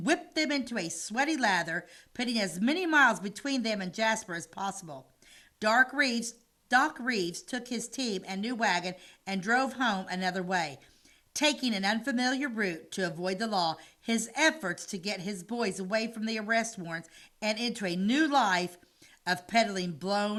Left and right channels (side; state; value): both; identical; correlation 1.00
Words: whipped them into a sweaty lather, putting as many miles between them and Jasper as possible. Doc Reeves took his team and new wagon and drove home another way, taking an unfamiliar route to avoid the law. His efforts to get his boys away from the arrest warrants and into a new life of peddling